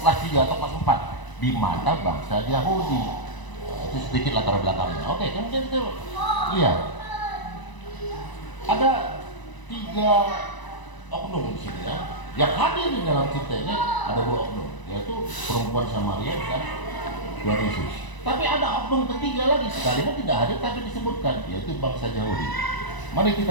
3 atau kelas 4 di mana bangsa Yahudi. Itu sedikit latar belakangnya. Oke, kemudian kita lihat ada 3 oknum di sini, ya. Yang hadir di dalam cerita ini ada 2 oknum, yaitu perempuan Samaria dan Tuhan Yesus. Tapi ada oknum ketiga lagi, sekalipun tidak hadir tapi disebutkan, yaitu bangsa Yahudi. Mari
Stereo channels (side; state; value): right; late; 1.0 ms